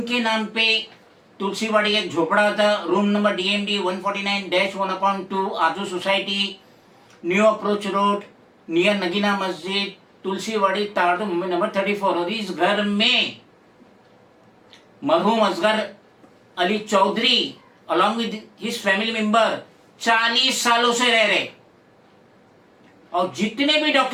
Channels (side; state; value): both; identical; correlation 1.00